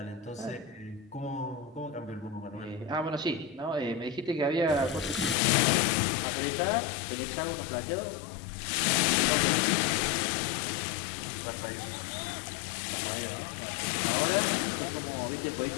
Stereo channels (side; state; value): right; drops out; at 5.4 s